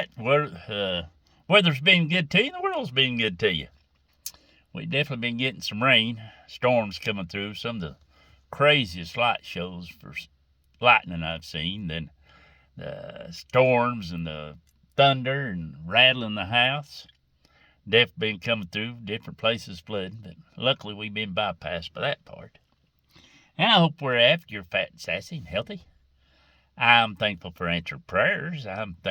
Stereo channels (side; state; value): both; identical; correlation 1.00